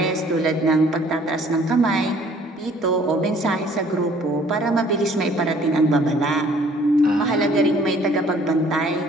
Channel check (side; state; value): both; normal; correlation 0.57